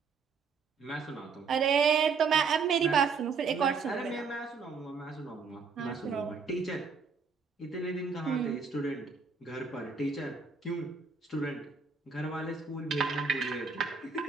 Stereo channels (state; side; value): quieter; left; 5.3 dB